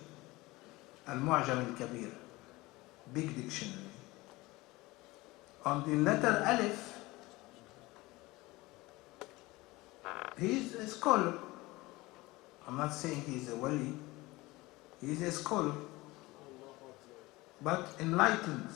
Al-Mu'jam al-Kabir, big dictionary. On the letter Alif, he's a scholar. I'm not saying he's a wali, he's a scholar, but enlightened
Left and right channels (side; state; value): right; quieter; 20.9 dB